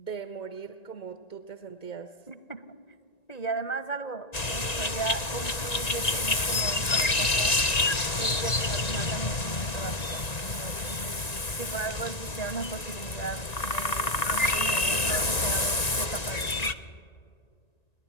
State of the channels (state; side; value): late; right; 1.9 ms